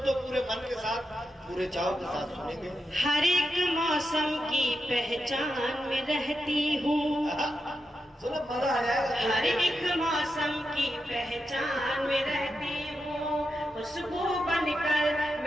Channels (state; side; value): normal; both; correlation 0.87